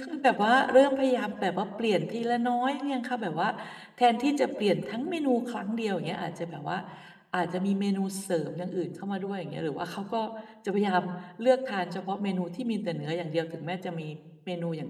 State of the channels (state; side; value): identical; both; correlation 1.00